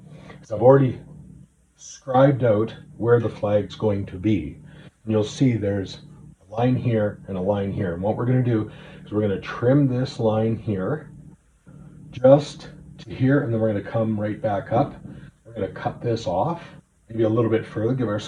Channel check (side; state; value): both; identical; correlation 1.00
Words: is I've already scribed out where the flag's going to be. And you'll see there's a line here and a line here. And what we're going to do is we're going to trim this line here just to here, and then we're going to come right back up. We're going to cut this off, maybe a little bit further, give